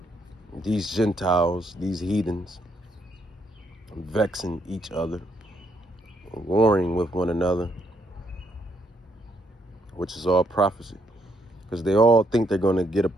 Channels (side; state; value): both; normal; correlation 0.74